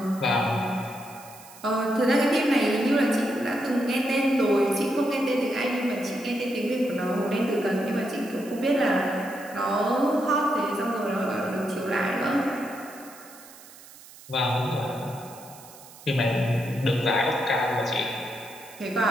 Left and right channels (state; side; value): noise; right; hiss, 20 dB below the sound